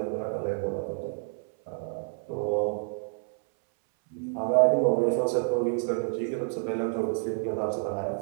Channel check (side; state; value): left; silent; 59 dB below the other